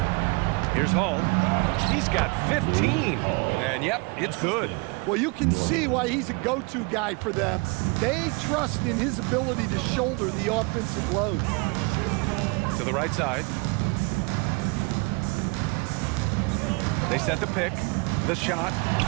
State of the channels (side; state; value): left; quieter; 28.9 dB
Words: Here's Hall. He's got 15. And yep, it's good. Well, you can see why he's a go-to guy for them. They trust in his ability to shoulder the offensive load. To the right side. They set the pick. The shot.